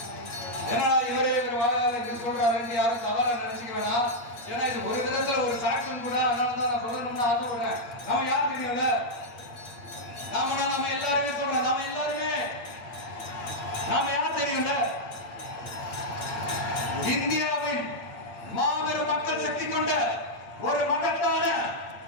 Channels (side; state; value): right; late; 8.2 ms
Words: என்னடா இவரே இவர் சொல்றாருன்னு யாரும் தவறா நினைச்சுக்க வேணாம். ஏன்னா இது ஒரு விதத்துல ஒரு சாட்சியம் கூட. அதனாலதான் நான் சொல்லணும்னு ஆசைப்படுறேன். நம்ம யார் தெரியல, நம்ம எல்லாருமே சொல்றோம். நாம யார் தெரியும்ல? இந்தியாவின் மாபெரும் மக்கள் சக்தி கொண்ட ஒரு மகத்தான